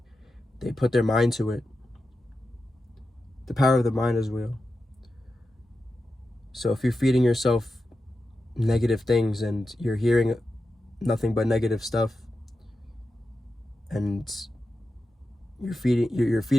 put their mind to it. The power of the mind is real. So if you're feeding yourself negative things and you're hearing nothing but negative stuff, and you're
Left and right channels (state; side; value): normal; both; correlation 0.91